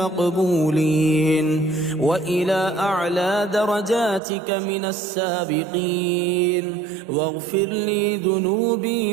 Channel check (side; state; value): left; drops out; at 4.2 s